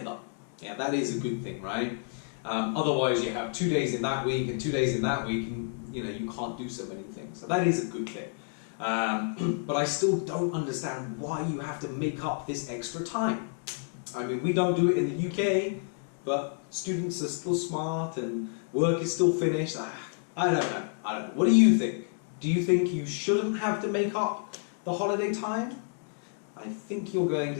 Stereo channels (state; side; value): silent; right; 58 dB below the other